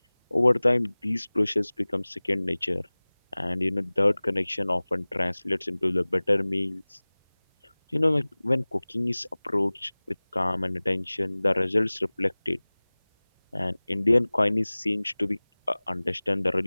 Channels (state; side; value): inverted; both; correlation -1.00